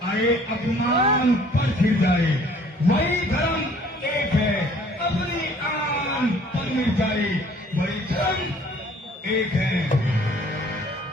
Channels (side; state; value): both; normal; correlation 0.56